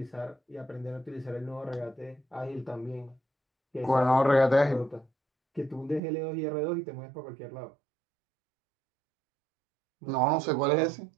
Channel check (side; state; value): left; drops out; at 6.0 s